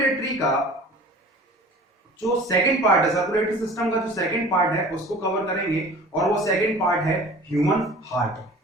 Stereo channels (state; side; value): normal; both; correlation 0.43